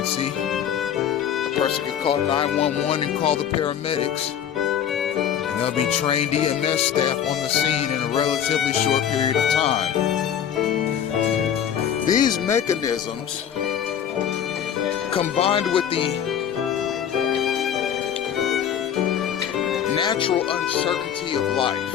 a person can call 911 and call the paramedics, and there'll be trained EMS staff on the scene in a relatively short period of time. These mechanisms, combined with the natural uncertainty of life,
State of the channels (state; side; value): quieter; right; 9.2 dB